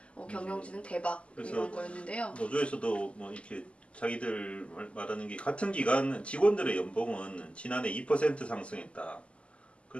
경영진은 대박 그래서 이런 거였는데요. 노조에서도 뭐 이렇게 자기들 말하는 게 같은 기간 직원들의 연봉은 지난해 2% 상승했다.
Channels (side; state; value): right; late; 0.057 ms